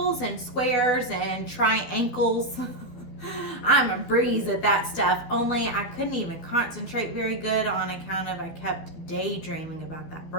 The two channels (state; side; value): late; right; 12 ms